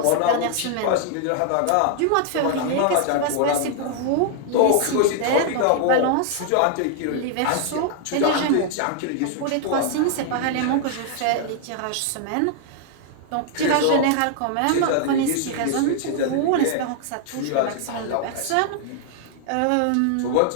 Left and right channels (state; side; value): different; both; correlation 0.00